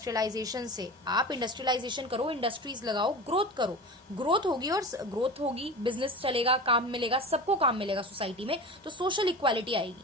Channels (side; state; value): both; normal; correlation 0.32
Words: से। आप इंडस्ट्रियलाइजेशन करो, इंडस्ट्रीज लगाओ, ग्रोथ करो, ग्रोथ होगी, और ग्रोथ होगी, बिजनेस चलेगा, काम मिलेगा, सबको काम मिलेगा सोसाइटी में, तो सोशल इक्वालिटी आएगी।